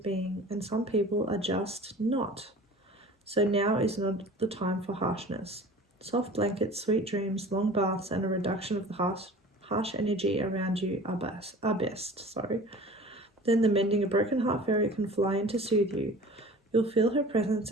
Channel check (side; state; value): both; normal; correlation 0.42